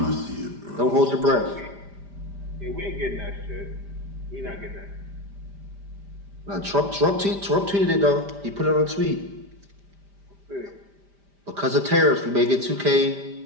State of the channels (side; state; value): left; late; 5.0 ms